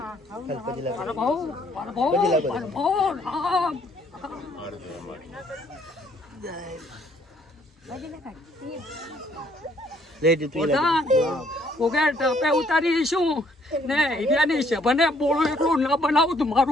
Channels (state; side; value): normal; both; correlation 0.65